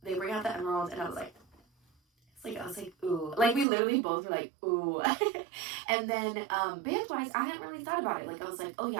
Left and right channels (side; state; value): left; drops out; at 3.7 s